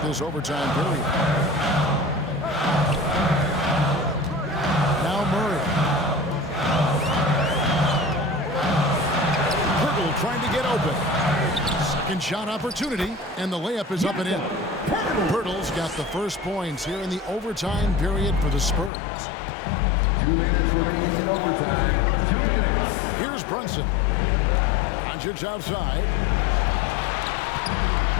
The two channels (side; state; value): right; drops out; at 18.9 s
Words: this overtime period. Now Murray. Pirtle trying to get open. Second shot opportunity, and the layup is up and in. Pirtle's got the first points here in the overtime period for the Spurs. 2 minutes remaining in overtime. 2 minutes. Here's Brunson. Doncic outside.